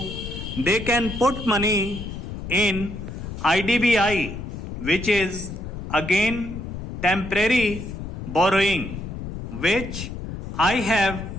they can put money in IDBI, which is again temporary borrowing, which I have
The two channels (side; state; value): left; noise; rumble, 8 dB below the sound